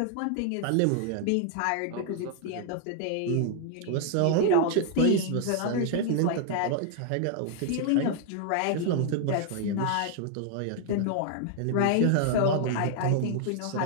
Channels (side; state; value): both; different; correlation 0.00